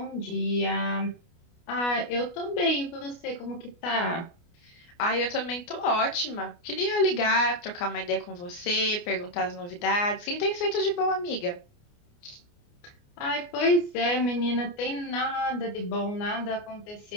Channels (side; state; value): right; late; 29 ms